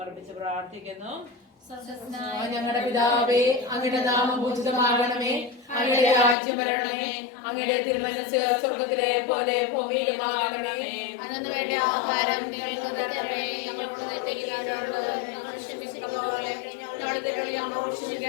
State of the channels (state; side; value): drops out; right; at 6.4 s